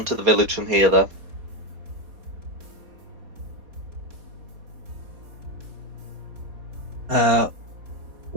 to the village from here though.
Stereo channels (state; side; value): late; left; 4.2 ms